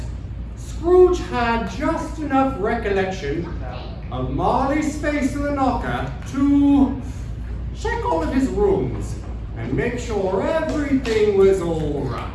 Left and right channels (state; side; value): identical; both; correlation 1.00